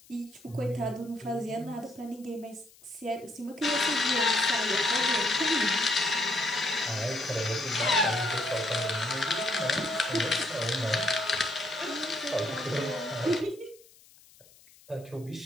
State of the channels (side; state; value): left; noise; hiss, 26 dB below the sound